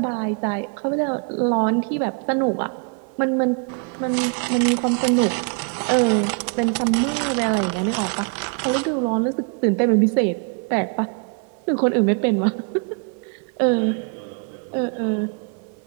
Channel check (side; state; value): left; quieter; 39.8 dB